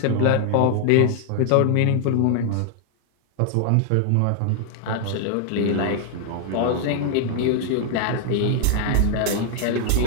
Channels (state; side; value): different; both; correlation 0.00